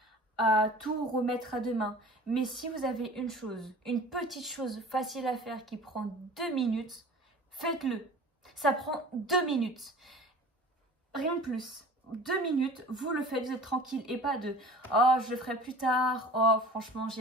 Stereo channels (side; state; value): both; normal; correlation 0.42